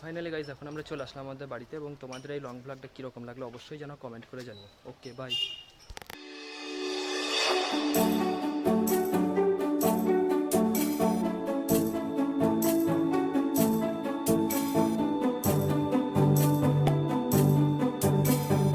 ফাইনালি গাইজ এখন আমরা চলে আসলাম আমাদের বাড়িতে, এবং তোমাদের এই লং ব্লগটা কীরকম লাগলো অবশ্যই যেন কমেন্ট করে জানিও। Okay bye.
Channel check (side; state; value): both; identical; correlation 1.00